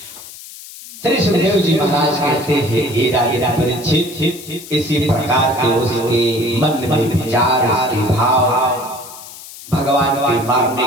श्री सुखदेव जी महाराज कहते हैं, हे राजा परीक्षित, इसी प्रकार से उसके मन में विचार, उसके भाव भगवान के मारने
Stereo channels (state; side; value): noise; left; hiss, 16 dB below the sound